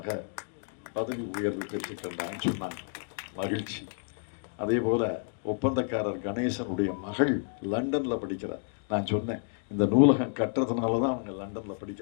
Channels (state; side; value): silent; right; 58 dB below the other